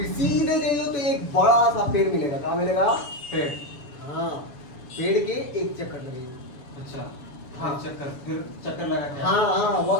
सीधे जाइयो तो एक बड़ा सा पेड़ मिलेगा। कहाँ मिलेगा? पेड़। हाँ, पेड़ के एक चक्कर लगेगा। अच्छा हाँ। चक्कर, फिर चक्कर लगा के हाँ हाँ वो,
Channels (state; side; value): late; right; 7.0 ms